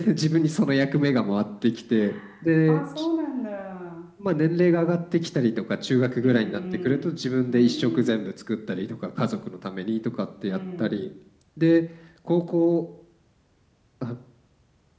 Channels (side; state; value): both; identical; correlation 1.00